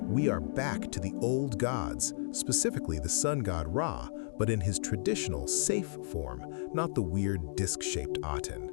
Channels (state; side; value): silent; right; digital silence